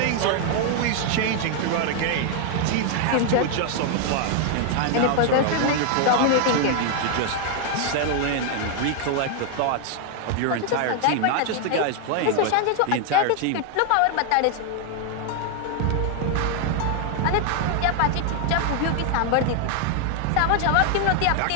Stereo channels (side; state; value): both; different; correlation 0.00